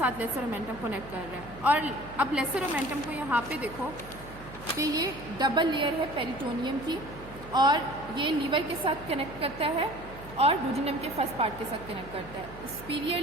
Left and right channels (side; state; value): right; noise; hum, 16 dB below the sound